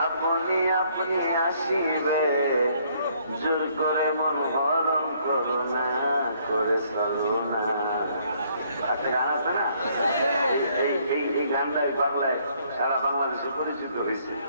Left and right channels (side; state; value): both; inverted; correlation -0.66